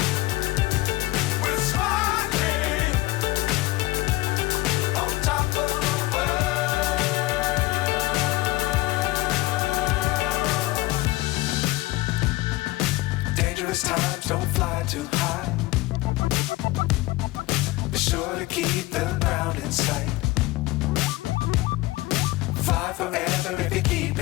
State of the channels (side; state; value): right; quieter; 19.6 dB